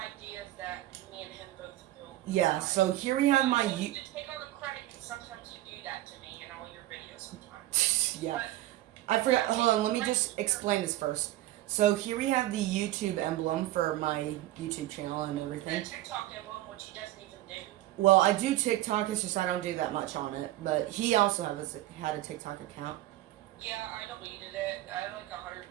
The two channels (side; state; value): left; quieter; 15.6 dB